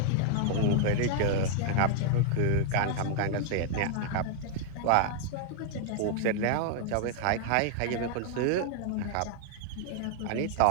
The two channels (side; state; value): both; different; correlation 0.00